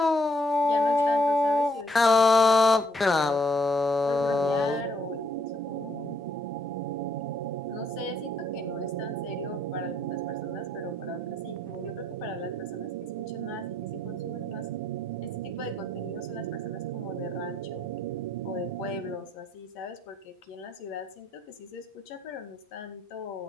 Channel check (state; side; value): normal; both; correlation 0.69